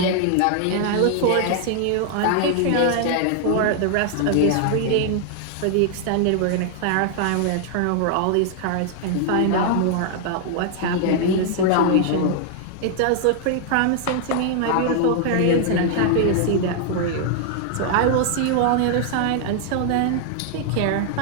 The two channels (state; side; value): different; both; correlation 0.00